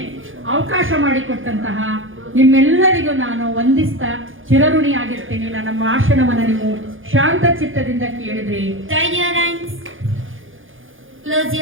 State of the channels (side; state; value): left; late; 0.58 ms